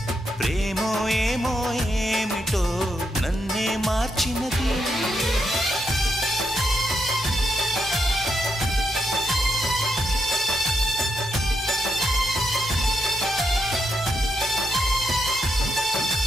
ప్రేమో ఏమో ఏమిటో నన్నే మార్చినది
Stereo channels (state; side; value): normal; both; correlation 0.81